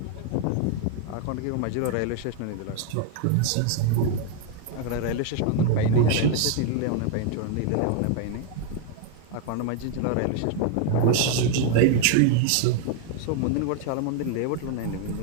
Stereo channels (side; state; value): both; different; correlation 0.00